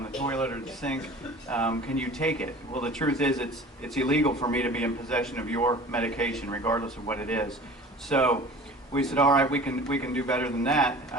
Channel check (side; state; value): both; normal; correlation 0.42